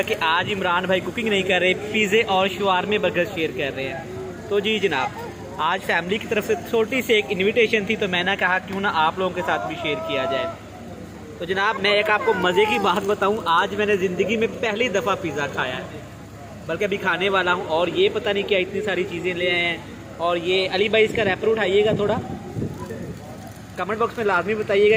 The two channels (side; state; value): both; identical; correlation 1.00